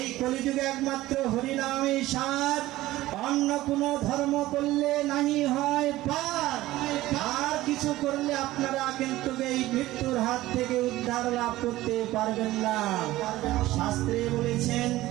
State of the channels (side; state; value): left; quieter; 16.6 dB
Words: কলিযুগে একমাত্র হরিনামই সার, অন্য কোনো ধর্ম করলে নাহি হয় পার। আর কিছু করলে আপনারা কিন্তু এই মৃত্যুর হাত থেকে উদ্ধার লাভ করতে পারবেন না। শাস্ত্রে বলেছেন